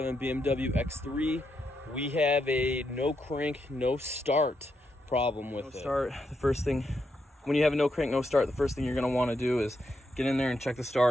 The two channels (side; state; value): both; normal; correlation 0.82